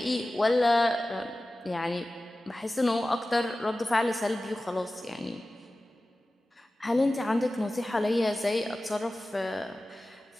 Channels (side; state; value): both; normal; correlation 0.96